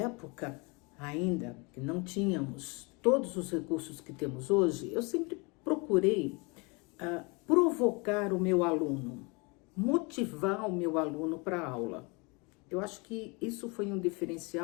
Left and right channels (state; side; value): quieter; right; 29.6 dB